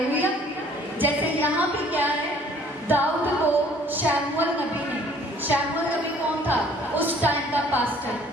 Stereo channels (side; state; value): both; normal; correlation 0.56